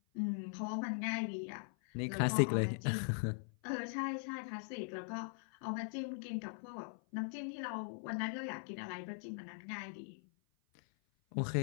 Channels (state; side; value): silent; right; 51 dB below the other